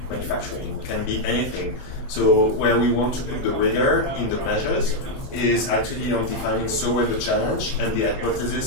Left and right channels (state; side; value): late; right; 20 ms